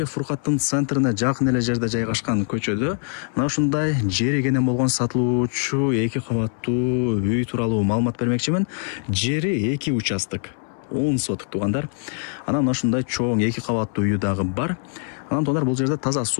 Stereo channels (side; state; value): right; silent; 64 dB below the other